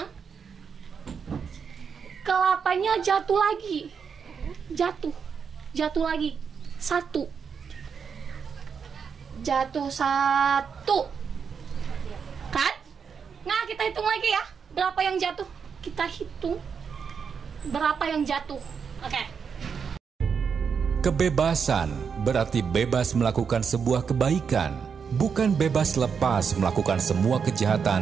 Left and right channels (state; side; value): quieter; left; 6.4 dB